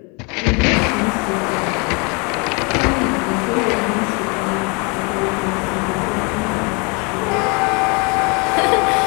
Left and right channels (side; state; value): right; quieter; 31.6 dB